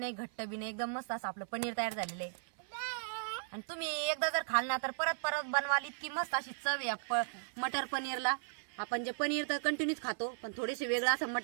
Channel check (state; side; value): silent; left; 53 dB below the other